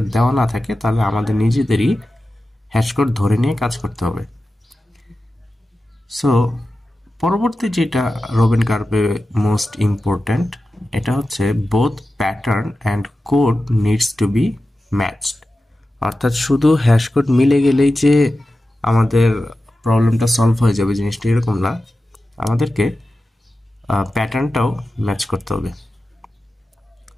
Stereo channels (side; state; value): both; normal; correlation 0.93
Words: দেওয়া না থাকে তাহলে আমাদের নিজেদেরই হ্যাশ কোড ধরে নিয়ে কাজ করতে হবে। সো পরবর্তী যেটা রবিন কার্ভে মোস্ট ইম্পর্ট্যান্ট, এটা হচ্ছে both pattern and code needs to be matched. অর্থাৎ শুধু হ্যাশ কোড মিলে গেলেই যে আমাদের প্রবলেমটা সলভ হয়ে যাবে জিনিসটা এরকম না, আমাদেরকে প্যাটার্নটাও ম্যাচ করতে হবে।